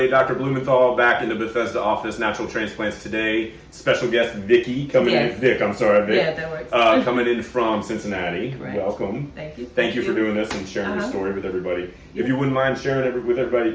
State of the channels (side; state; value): both; identical; correlation 1.00